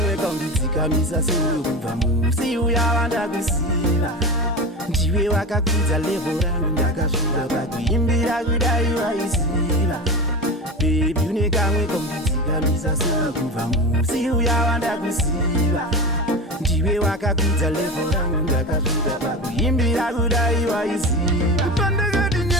kaunditsika misa sinukumva musi uyawanda kusila Ndiwe wakakudza level rangu ndakasvika pakuimbira kudai waisiva Baby unekamwe kaunditsika misa sinukumva musi uyawanda kusiva Ndiwe wakakudza level rangu ndakasvika pakuimbira kudai waisiva Pandakati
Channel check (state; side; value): normal; both; correlation 0.26